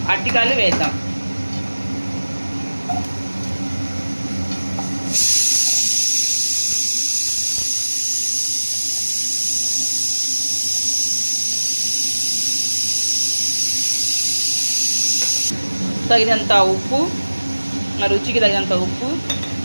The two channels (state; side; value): inverted; both; correlation -1.00